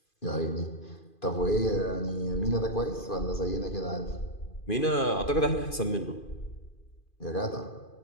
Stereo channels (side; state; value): right; late; 2.5 ms